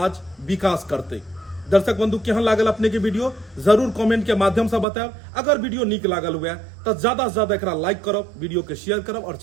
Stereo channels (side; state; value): left; drops out; at 4.9 s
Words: विकास करते दर्शक बंधु केहन लागल अपने के वीडियो जरूर कमेंट के माध्यम से बताएब अगर वीडियो निक लागल हुए तो ज्यादा से ज्यादा एकरा लाइक करब वीडियो के शेयर करब और